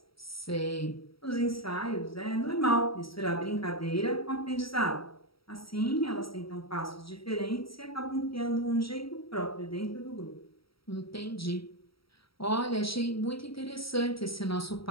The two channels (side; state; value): right; late; 0.75 ms